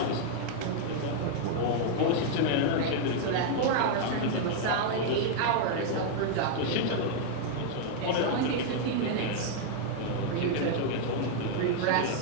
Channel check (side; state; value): both; different; correlation 0.00